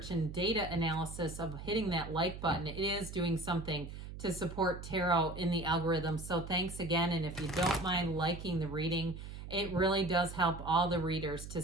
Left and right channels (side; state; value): right; noise; hum, 10 dB below the sound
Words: and data analysis of hitting that like button. It is doing something to support tarot in the algorithm. So thanks again. And if you don't mind liking the reading, it really does help all the readers